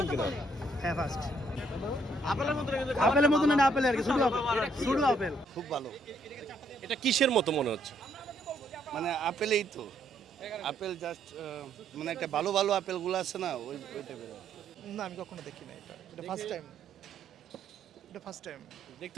কিনা? হ্যাঁ ফার্স্ট আপেলের মতো আপেলের মতো না আপেল আর কি শুধু আপেল খুব ভালো, এটা কিসের মতো মনে হচ্ছে? মানে আপেলেই তো আপেল জাস্ট মানে একটা ভালো ভালো আপেলগুলো আছে না ওই টাইপের। না আমি কখনো দেখি না এটা ফার্স্ট টাইম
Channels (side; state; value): both; normal; correlation 0.69